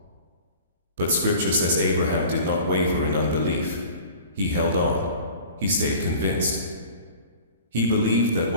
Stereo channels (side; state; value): both; inverted; correlation -0.43